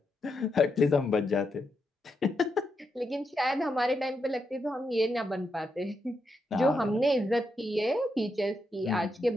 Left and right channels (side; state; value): both; normal; correlation 0.83